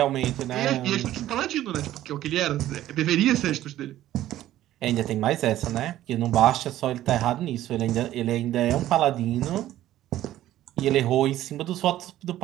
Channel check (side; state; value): left; quieter; 13.7 dB